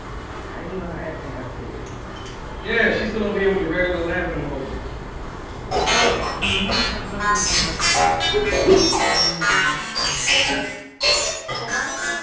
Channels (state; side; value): identical; both; correlation 1.00